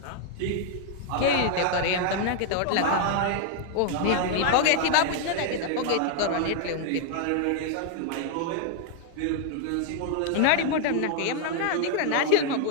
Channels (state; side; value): different; both; correlation 0.00